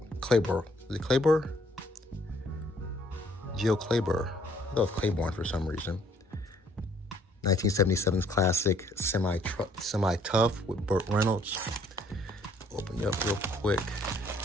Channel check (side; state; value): both; normal; correlation 0.63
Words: Is it Claiborne? Geo Claiborne. I thought it was Claiborne for some reason. 1977's classic Semi-Tough with Burt Reynolds. Open it up real quick.